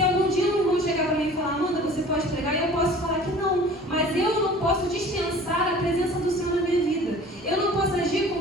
algum dia um irmão chegar para mim e falar, Amanda, você pode pregar, eu posso falar que não. Mas eu não posso dispensar a presença do Senhor na minha vida. Eu não posso agir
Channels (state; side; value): normal; both; correlation 0.45